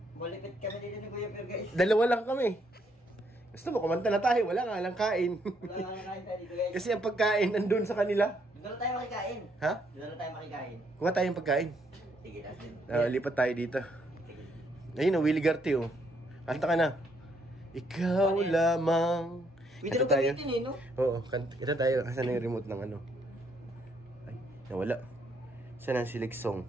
Malipit kami dito ni Kuya Pure guys. Dalawa lang kami. Gusto mo, kumanta na tayo. Wala nga lang kain. Wala nga nakain tayo dito guys. Kasi ang pagkain nandun sa kanila. Doon na tayo makikain. Ha? Doon na tayo makikain. Kuha tayong pagkain. Sige, tas din. Lipat tayo dito. Sige. Ayun, Willie Garte oh. Kanta ka na. Ikaw lamang. Video Kanta tayo. gamitin eh, no? Oo, kanta tayo. Kasi na yung remote ng ano. Ay, nawala. Saan ang select song?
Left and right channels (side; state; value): both; normal; correlation 0.72